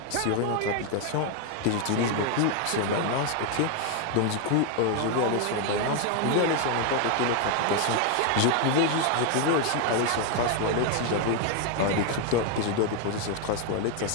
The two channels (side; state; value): both; different; correlation 0.01